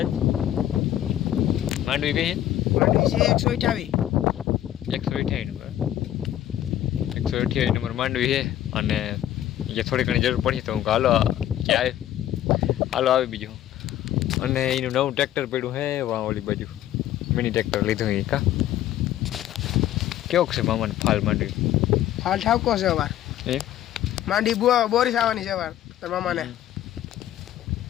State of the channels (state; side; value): quieter; right; 12.3 dB